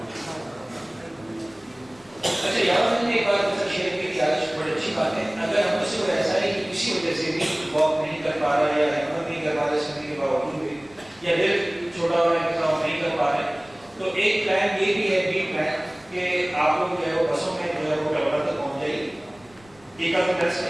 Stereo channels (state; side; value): noise; left; rumble, 28 dB below the sound